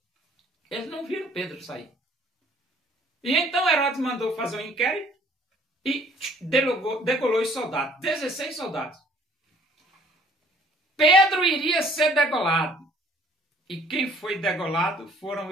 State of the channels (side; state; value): both; normal; correlation 0.57